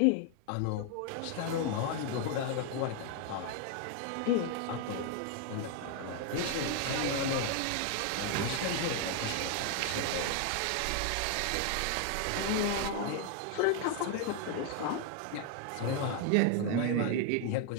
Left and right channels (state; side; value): different; both; correlation 0.01